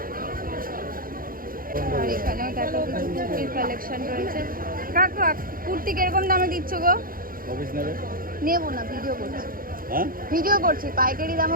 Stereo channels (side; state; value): left; late; 0.41 ms